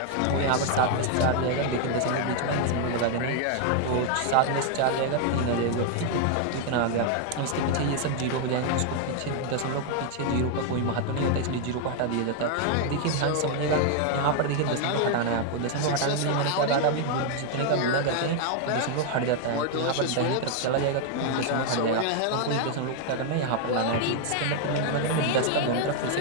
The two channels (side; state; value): both; different; correlation 0.00